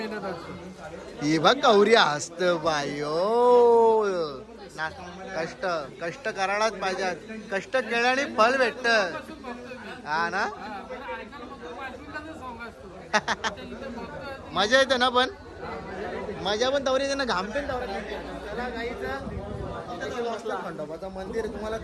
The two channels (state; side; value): identical; both; correlation 1.00